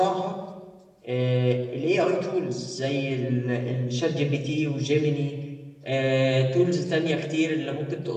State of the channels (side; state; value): both; identical; correlation 1.00